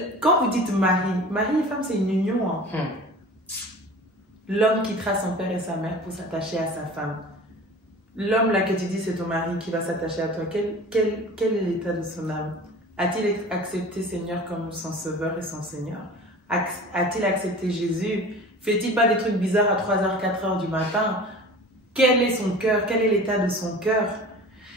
quand vous dites mari et femme, c'est une union. Hein. L'homme quittera son père et sa mère pour s'attacher à sa femme. L'homme là que tu dis c'est ton mari qui va s'attacher à toi, quel est l'état de son âme? A-t-il accepté Seigneur comme son sauveur et son Seigneur? A-t-il accepté Jésus Fait-il pas des trucs bizarres à 3h, 4h du matin? Quel est son cœur? Quel est l'état de son cœur?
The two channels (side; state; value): both; normal; correlation 0.40